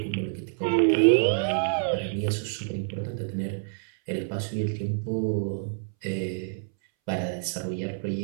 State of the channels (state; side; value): silent; left; 60 dB below the other